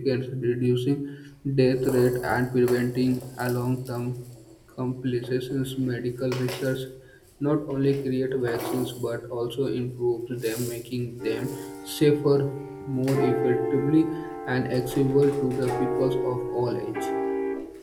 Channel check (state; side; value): identical; both; correlation 1.00